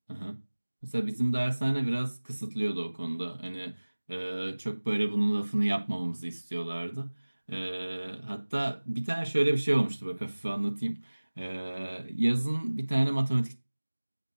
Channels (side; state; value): both; inverted; correlation -1.00